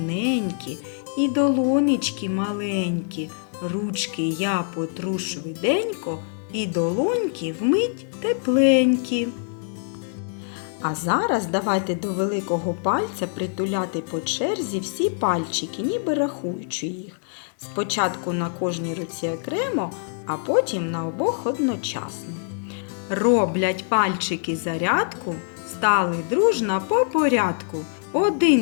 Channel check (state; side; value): silent; right; 62 dB below the other